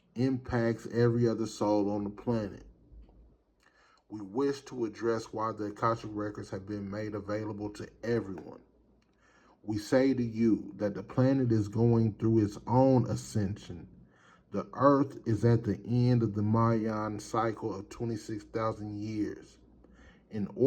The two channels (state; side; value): identical; both; correlation 1.00